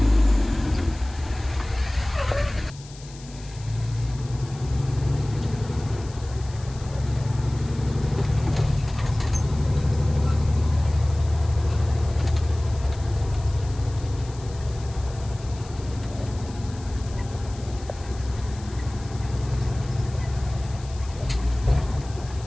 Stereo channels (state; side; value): noise; left; hiss, 20 dB below the sound